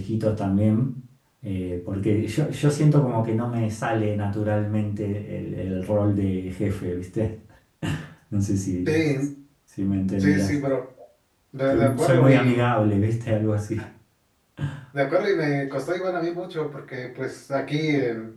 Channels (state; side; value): identical; both; correlation 1.00